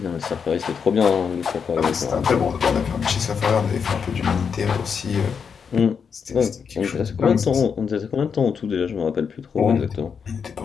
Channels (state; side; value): quieter; right; 6.4 dB